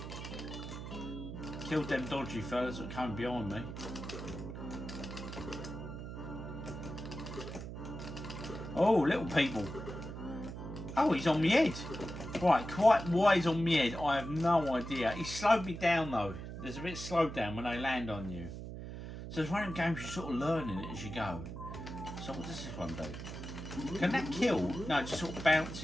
Killed them dodgy fellas that came behind me. Oh, little people. Oh, he's on my head. Right, quite why he's on my head, I have no idea. He slowed me down though. There's a bit slowed down when they land on you. So it's one of them games you're sort of learning it as you go. So what does this one do? Can that kill? No, it just sort of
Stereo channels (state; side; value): noise; right; hum, 8 dB below the sound